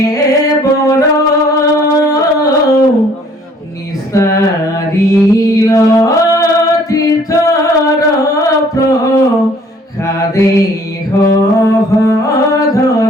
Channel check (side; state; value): both; normal; correlation 0.58